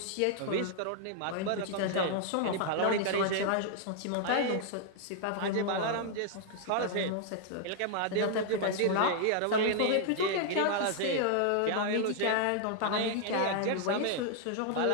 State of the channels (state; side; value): different; both; correlation 0.00